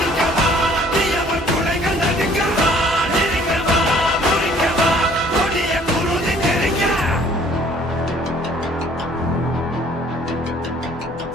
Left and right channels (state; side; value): normal; both; correlation 0.57